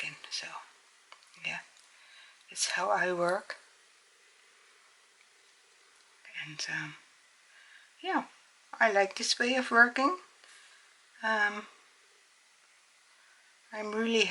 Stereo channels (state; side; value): identical; both; correlation 1.00